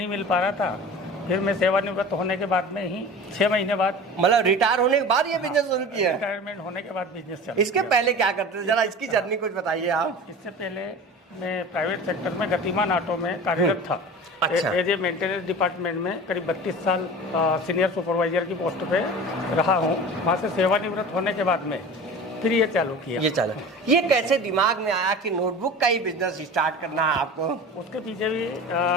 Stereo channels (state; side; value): normal; both; correlation 0.36